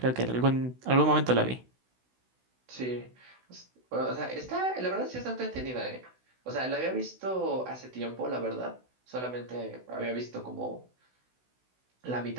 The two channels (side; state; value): left; late; 16 ms